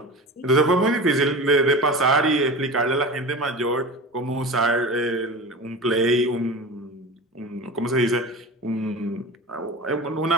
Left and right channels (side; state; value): both; normal; correlation 0.32